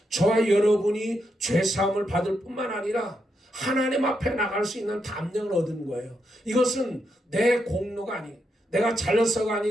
저와 여러분이 죄사함을 받을 뿐만 아니라 하나님 앞에 나갈 수 있는 담력을 얻은 거예요. 이것은 내 공로가 아니에요. 내가 잘나서가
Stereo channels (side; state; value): both; normal; correlation 0.82